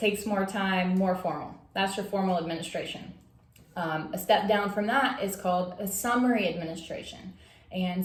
more time, more formal. That's your formal administration. A step down from that is called a summary administration. And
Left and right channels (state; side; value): identical; both; correlation 1.00